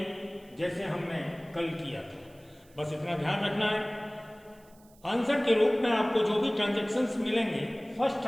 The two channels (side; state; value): right; noise; hiss, 29 dB below the sound